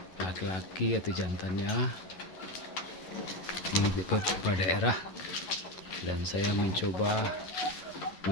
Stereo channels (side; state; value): right; late; 11 ms